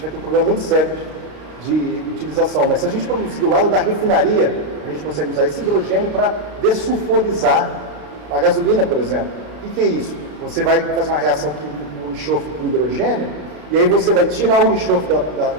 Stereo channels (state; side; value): late; left; 33 ms